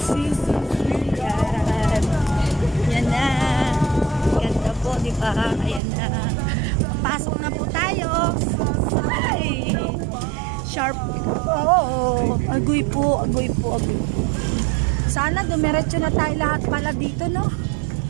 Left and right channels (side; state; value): left; drops out; at 5.8 s